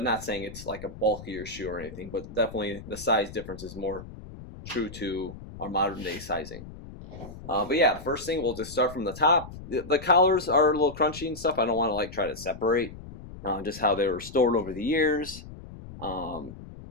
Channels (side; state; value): left; noise; rumble, 14 dB below the sound